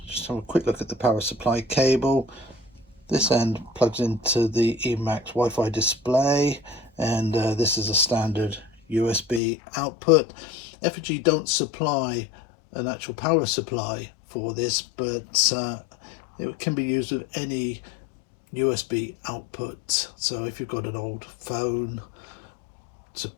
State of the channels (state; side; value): drops out; right; at 9.4 s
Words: just have a quick look at the power supply cable. This end plugs into the E-Max Wi-Fi display, and this is a standard USB output. Efergy don't supply an actual power supply for this, but it can be used with any USB output. So if you've got an old phone, it's a